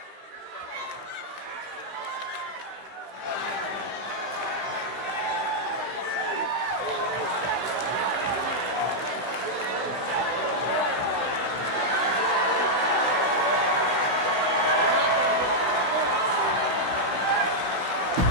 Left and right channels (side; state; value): left; late; 16 ms